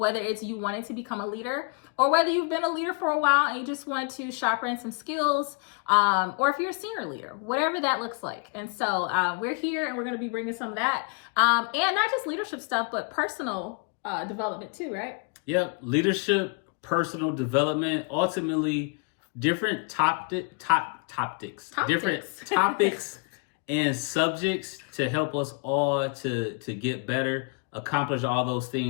it's you wanting to become a leader, or whether you've been a leader for a while and you just want to sharpen some skills, or if you're a senior leader, whatever that looks like. And so we're here, and we're going to be bringing some of that, and not just leadership stuff, but personal development too, right? Yep. Leadership, personal development, ultimately different different topics and subjects to help us all to get better, accomplish all those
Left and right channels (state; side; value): quieter; right; 35.1 dB